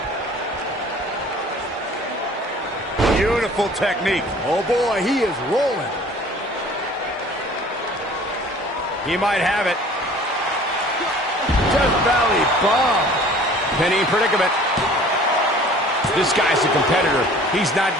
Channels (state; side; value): normal; both; correlation 0.49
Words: Beautiful Beautiful technique. Oh boy, he is rolling. He might have it. Death Valley bomb. Penny in predicament. This guy's a competitor. He's not